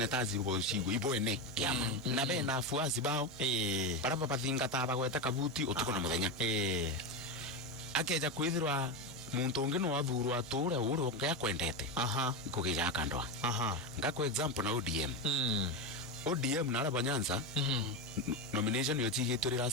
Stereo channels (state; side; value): normal; both; correlation 0.14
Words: ibo shigo ibo ene kiama na be na afuasi bao bara bathinga ta bagweta kabuti utuko na muthenya akeja kwithirwa muntu ungi no athurwa ture uru ngaya kwendete ikugija kandwa ngako example na ODM na Araba Nyanza nomination yo tigituri